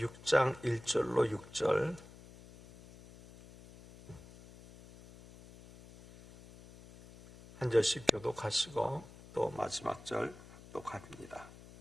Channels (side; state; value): left; noise; hum, 19 dB below the sound